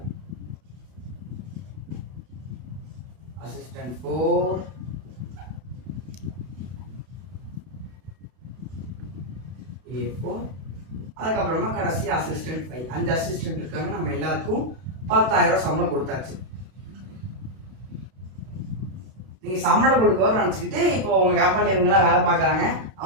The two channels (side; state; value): left; late; 32 ms